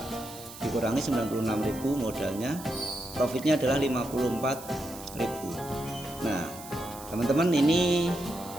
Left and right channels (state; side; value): noise; right; hiss, 15 dB below the sound